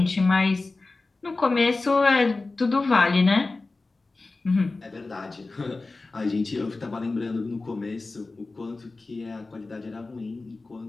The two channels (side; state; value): right; quieter; 3.5 dB